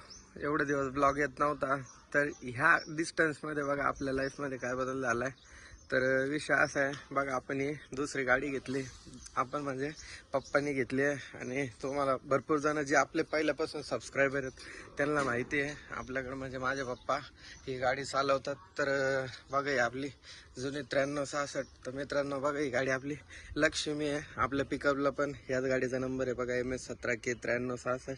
एवढे दिवस ब्लॉग येत नव्हता. तर ह्या डिस्टन्समध्ये बघा आपल्या लाईफमध्ये काय बदल झालाय. तर विषय असा आहे बघा आपण ही दुसरी गाडी घेतली. आपण म्हणजे पप्पांनी घेतली आहे आणि तुम्हाला भरपूर जण जे आपले पहिल्यापासून सबस्क्रायबर आहेत त्यांना माहिती आहे आपल्याकडे म्हणजे माझे पप्पा ही गाडी चालवतात. तर बघा ही आपली जुनी 9366. तर मित्रांनो बघा ही गाडी आपली लक्ष्मी आहे. आपल्या पिकअपला पण याच गाडीचा नंबर आहे बघा MS17K 9366.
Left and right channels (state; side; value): identical; both; correlation 1.00